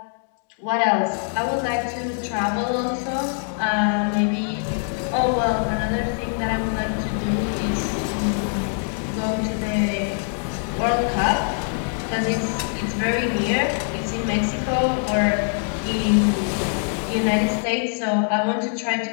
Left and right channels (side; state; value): right; silent; 60 dB below the other